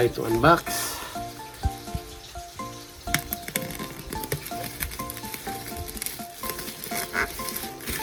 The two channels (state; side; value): identical; both; correlation 1.00